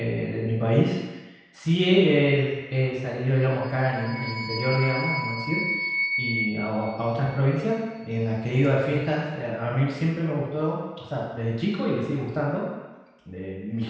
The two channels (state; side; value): identical; both; correlation 1.00